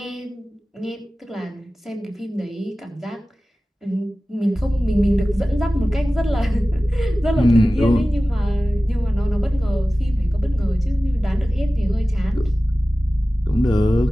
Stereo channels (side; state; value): both; normal; correlation 0.96